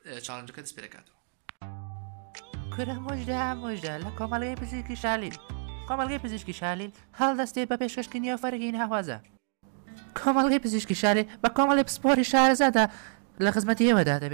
چاڵنجەکە دەست پێ دەکاتەوە. کورە مۆژدا لە کۆمەڵگەی پزیشکی شالیل کۆمەڵگەی پزیشکی شالیل هەڵدەستێت بە پێشکەشکردنی فەرگین هاوازە. کۆمەڵگەی پزیشکی شالیل بە کۆمەڵی پسپۆری شارەزادا لە خزمەتی ئێوەدا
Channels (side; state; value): left; silent; digital silence